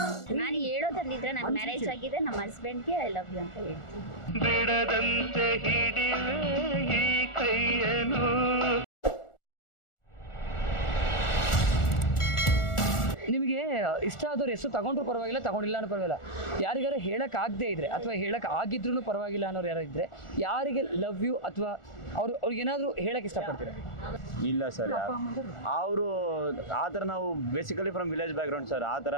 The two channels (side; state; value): right; late; 1.4 ms